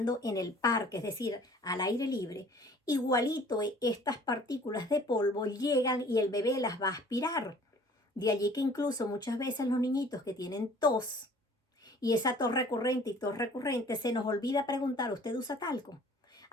en el parque, es decir, al aire libre, igualito estas partículas de polvo llegan y el bebé las va a aspirar. De allí que incluso muchas veces los niñitos que tienen tos y esa tos recurrente y tos recurrente, se nos olvida preguntar, ¿usted usa talco?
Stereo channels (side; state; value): both; normal; correlation 0.51